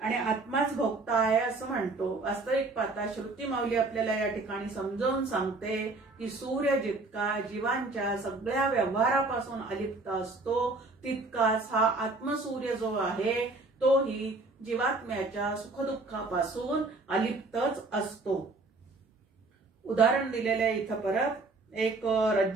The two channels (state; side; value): quieter; left; 3.3 dB